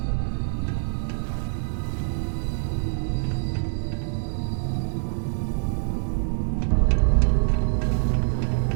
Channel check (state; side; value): silent; left; 57 dB below the other